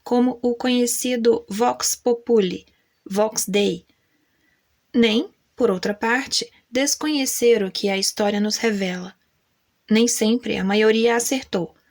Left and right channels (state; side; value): identical; both; correlation 1.00